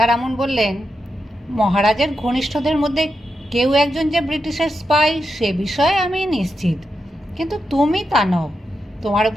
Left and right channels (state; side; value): normal; both; correlation 0.87